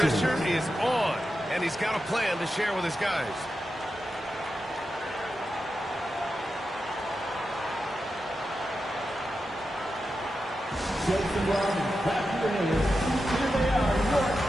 is on, and he's got a plan to share with his guys.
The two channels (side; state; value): both; normal; correlation 0.90